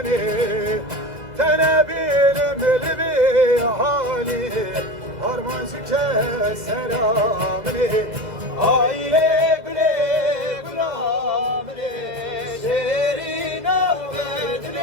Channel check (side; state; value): left; late; 2.0 ms